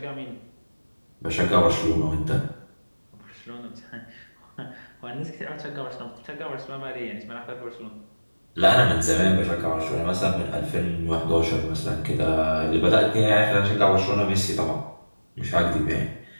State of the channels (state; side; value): inverted; both; correlation -1.00